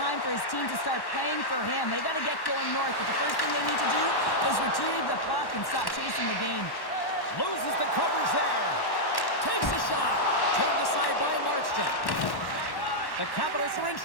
for his team to start playing for him. They got to get going north, but the first thing they need to do is retrieve the puck and stop chasing the game. Loses the coverage there. Takes a shot. Turned aside by Markstrom. The Capitals are in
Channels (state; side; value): late; right; 1.1 ms